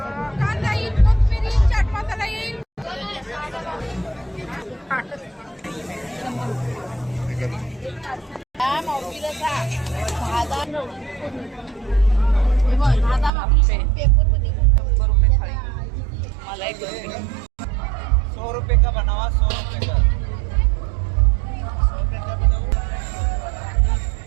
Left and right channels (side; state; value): left; drops out; at 13.3 s